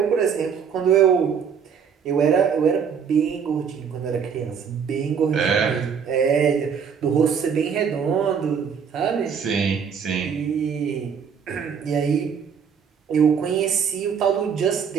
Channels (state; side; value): quieter; left; 6.9 dB